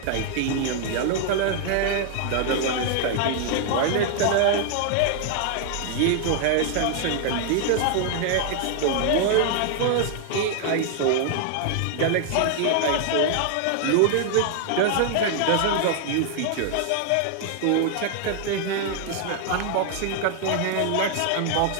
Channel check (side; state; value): both; different; correlation 0.00